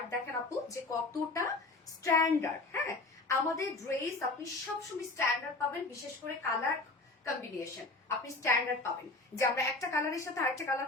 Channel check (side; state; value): right; quieter; 3.3 dB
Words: দেখেন আপু যে কতটা স্ট্যান্ডার্ড। হ্যাঁ, আমাদের ড্রেস আপনি সবসময় স্ট্যান্ডার্ড পাবেন, বিশেষ করে কালার কম্বিনেশন আপনি স্ট্যান্ডার্ড পাবেন। যে আমরা একটা কালারের সাথে আরেকটা